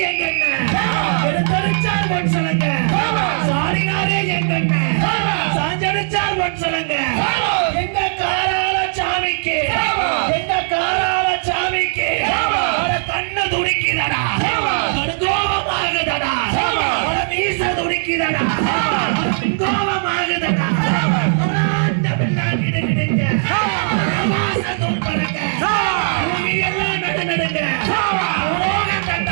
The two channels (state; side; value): silent; left; digital silence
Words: எங்கண்ண எடுத்தடிச்சார் பொன் சொல்லுங்க சாரினாரே எங்கண்ண சாஞ்சடிச்சார் பொன் சொல்லுங்க வீச துடிக்கிறடா கோபமாகுதடா அந்த பிள்ளான் கிடுகிடுங்க வாசத்தோடு பறக்க எல்லாம் நடுநடுங்க உலகம்